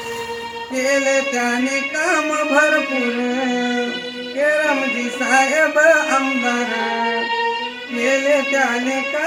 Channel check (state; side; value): identical; both; correlation 1.00